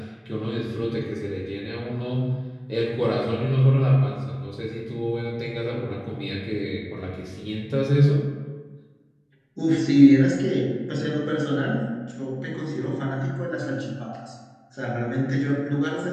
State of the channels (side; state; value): both; identical; correlation 1.00